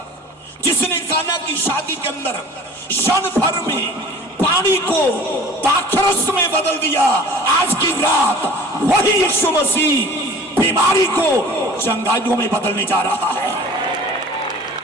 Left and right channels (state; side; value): normal; both; correlation 0.45